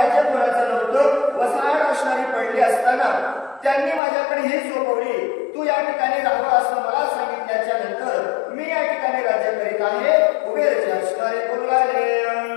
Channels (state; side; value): drops out; right; at 4.0 s